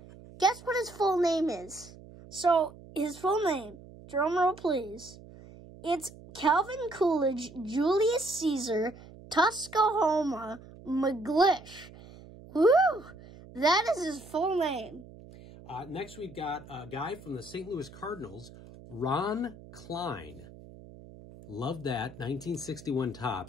guess what his full name is? So, his full name, drumroll please, it's Calvin Coolidge Julius Caesar Tuskahoma McGlish. Woo! That is his full name. Next, we've got a guy from the St. Louis Cardinals, Ron Klein. Love that, 1961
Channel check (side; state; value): right; noise; hum, 19 dB below the sound